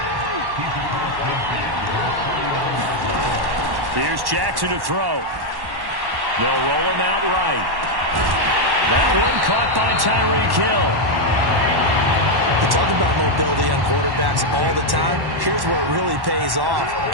Here's Jackson to throw. They'll roll him out right. That one caught by Tyreek Hill. We talk about mobility on quarterbacks all the time. Here's where it really pays off.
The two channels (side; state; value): left; late; 1.1 ms